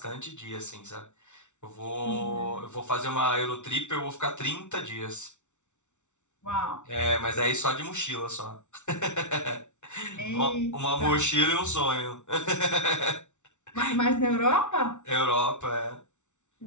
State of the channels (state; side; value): late; right; 0.84 ms